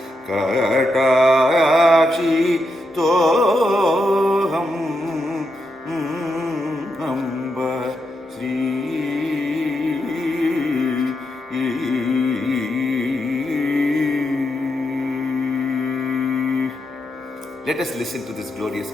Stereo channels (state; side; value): normal; both; correlation 0.83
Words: Katakshi Toham Amba Sri. Let us listen to this glorious